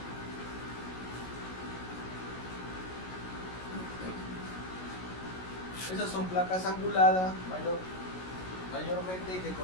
Esas son placas anguladas mayormente que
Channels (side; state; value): right; late; 16 ms